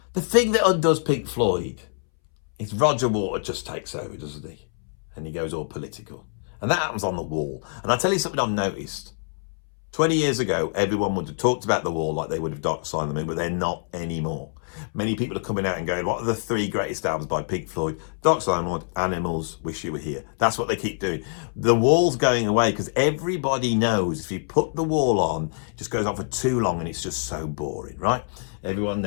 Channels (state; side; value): silent; right; 62 dB below the other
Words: the thing that undoes Pink Floyd is Roger Waters just takes over, doesn't he? And he goes all political. And that happens on the Wall. And I'll tell you something I've noticed. 20 years ago, everyone would have talked about the Wall like they would have Dark Side of the Moon, but they're not anymore. Many people are coming out and going, what are the 3 greatest albums by Pink Floyd? Dark Side of the Moon, Animals, Wish You Were Here. That's what they keep doing. The Wall's going away because everybody knows if you put the Wall on, it just goes on for too long and it's just so boring, right? Everyone